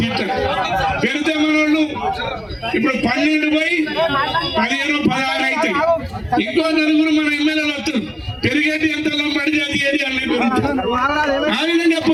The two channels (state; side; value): identical; both; correlation 1.00